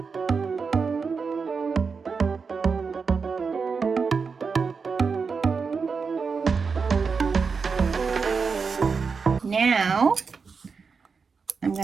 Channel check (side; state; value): left; quieter; 5.2 dB